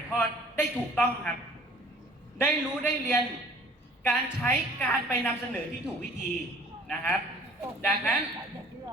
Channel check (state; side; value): normal; both; correlation 0.52